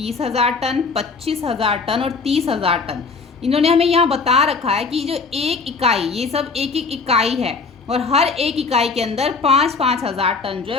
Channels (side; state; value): right; quieter; 4.6 dB